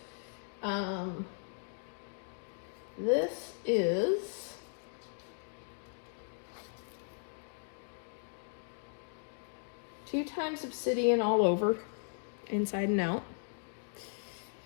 This is two times obsidian all over, inside and out.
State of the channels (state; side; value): silent; right; digital silence